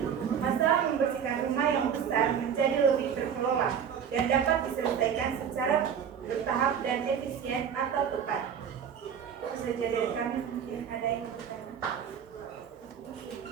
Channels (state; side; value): quieter; left; 7.9 dB